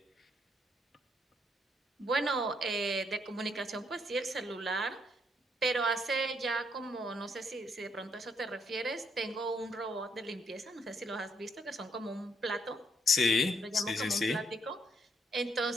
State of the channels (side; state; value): both; normal; correlation 0.72